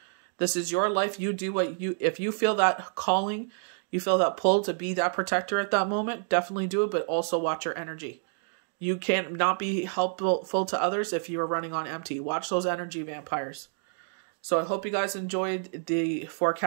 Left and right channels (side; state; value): left; silent; digital silence